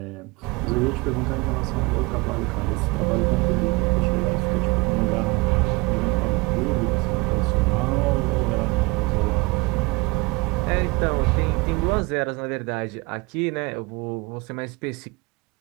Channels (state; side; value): quieter; left; 25.3 dB